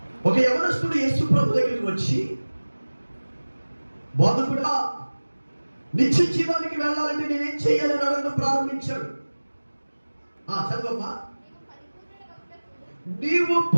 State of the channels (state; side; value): inverted; both; correlation -1.00